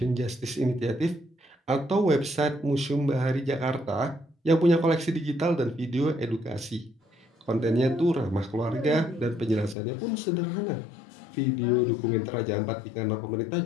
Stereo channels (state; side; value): drops out; right; at 9.8 s